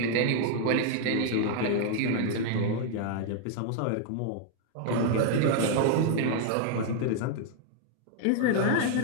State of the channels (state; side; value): different; both; correlation 0.00